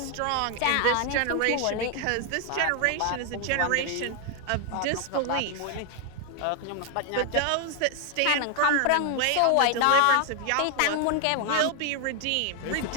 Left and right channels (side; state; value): both; different; correlation 0.00